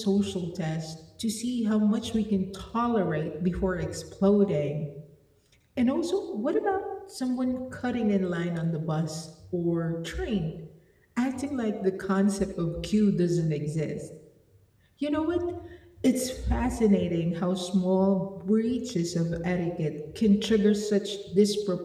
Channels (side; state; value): both; identical; correlation 1.00